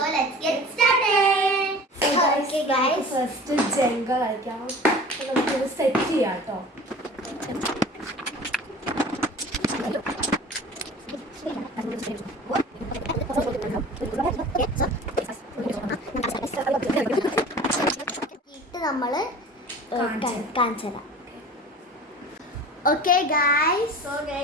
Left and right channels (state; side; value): normal; both; correlation 0.40